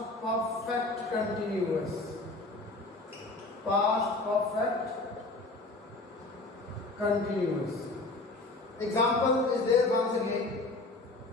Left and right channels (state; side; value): quieter; right; 3.2 dB